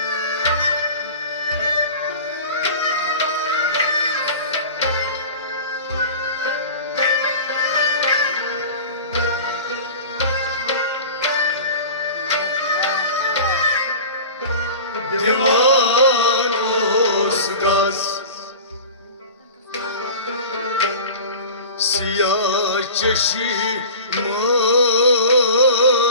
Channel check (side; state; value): both; inverted; correlation -0.37